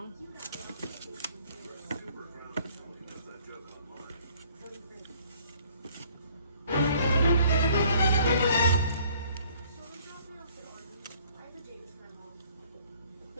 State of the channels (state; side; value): inverted; both; correlation -0.58